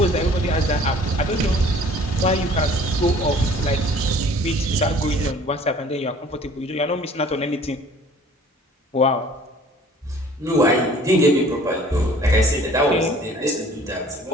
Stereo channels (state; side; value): normal; both; correlation 0.52